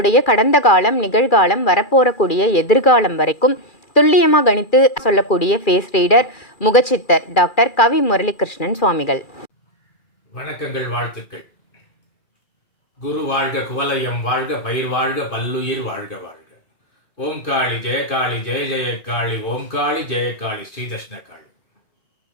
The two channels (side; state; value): right; late; 2.4 ms